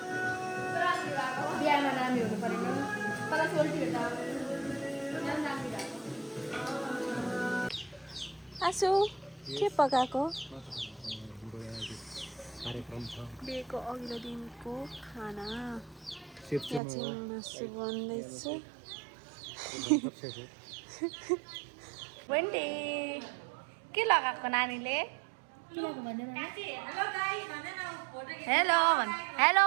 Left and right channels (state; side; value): drops out; left; at 16.8 s